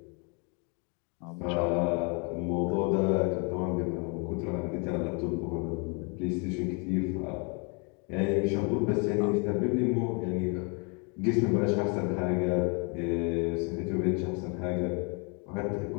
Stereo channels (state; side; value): quieter; right; 34.6 dB